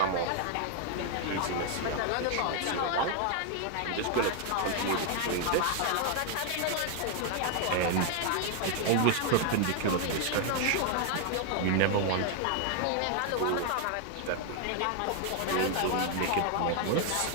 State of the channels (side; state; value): both; different; correlation 0.00